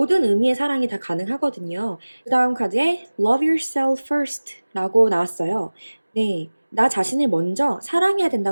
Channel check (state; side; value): inverted; both; correlation -1.00